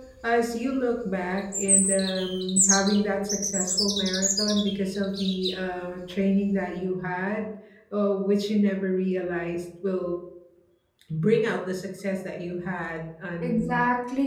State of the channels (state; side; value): identical; both; correlation 1.00